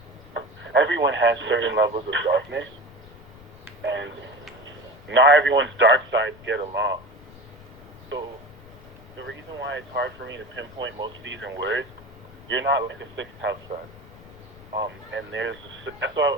everyone has certain levels of darkness, and not everyone's dark sides get along. So the reason why it's hard for me to pinpoint most of these in words, you're not like a sixth house sun. And that's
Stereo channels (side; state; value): left; noise; rumble, 21 dB below the sound